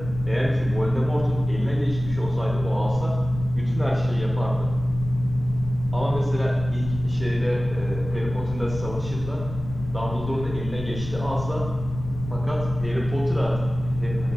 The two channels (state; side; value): noise; left; rumble, 10 dB below the sound